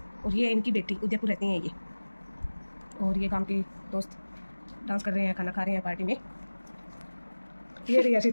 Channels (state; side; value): inverted; both; correlation -1.00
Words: और ये है इनकी बेटी, उदयपुर रहती हैं ये। और ये गांव के दोस्त डांस कर रहे हैं, खाना खा रहे हैं पार्टी में। ये रही